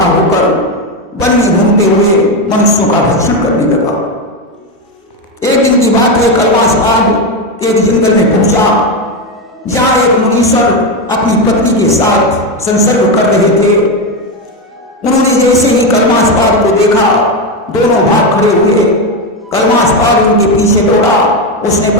होकर वन में घूमते हुए मनुष्यों का भक्षण करने लगा। एक दिन की बात है, कलमास्पाद एक जंगल में पहुंचा जहां एक मुनीश्वर अपनी पत्नी के साथ संसर्ग कर रहे थे। उन्होंने जैसे ही कलमास्पाद को देखा दोनों भाग खड़े हुए। कलमास्पाद उनके पीछे दौड़ा, उसने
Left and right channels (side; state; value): both; normal; correlation 0.11